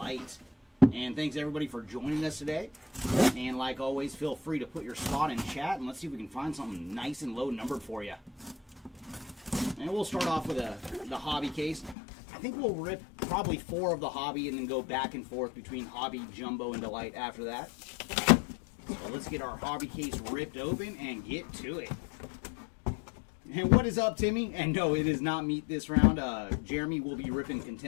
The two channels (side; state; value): right; drops out; at 12.0 s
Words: And thanks everybody for joining us today. And like always, feel free to put your spot in chat, and let's see if we can find something nice and low numbered for you. And we'll start off with the hobby case. I think we'll rip probably 4 of the hobby and then go back and forth between hobby, jumbo, and delight after that. So let's get our hobby case ripped open and get to it. And what is up, Timmy? And no, it is not meat this round. Jeremy will be ripping